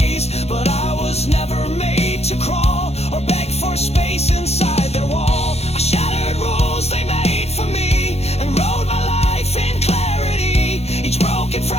But I was never made to crawl or beg for space inside their wall. I shattered rules they made for me and wrote my life in clarity. Each broken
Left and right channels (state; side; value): late; right; 0.30 ms